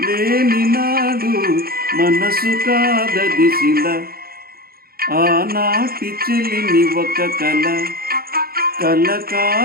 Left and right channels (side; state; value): left; late; 0.44 ms